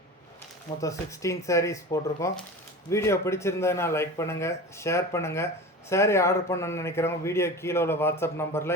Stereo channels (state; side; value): normal; both; correlation 0.32